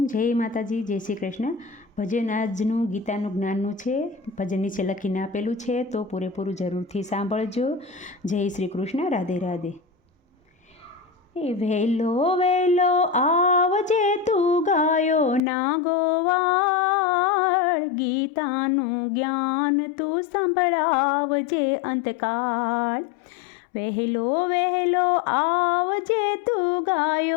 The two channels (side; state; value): right; drops out; at 15.4 s